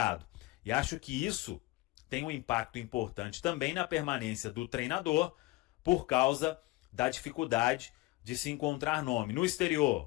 E acho que isso tem um impacto importante também na permanência do treinador, por causa da dificuldade de se encontrar nome. No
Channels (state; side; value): quieter; right; 19.6 dB